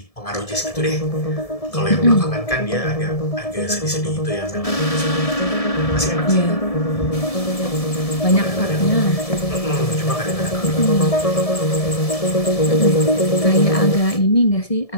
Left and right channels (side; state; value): right; late; 1.7 ms